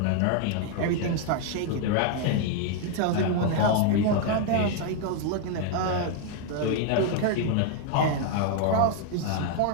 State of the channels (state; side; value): different; both; correlation 0.00